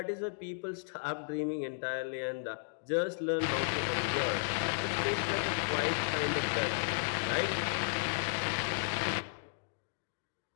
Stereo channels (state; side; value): silent; right; digital silence